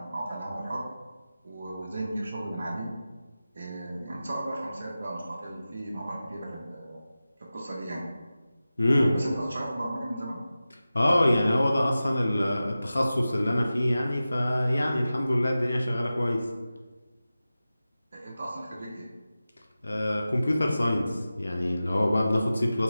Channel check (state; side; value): inverted; both; correlation -0.95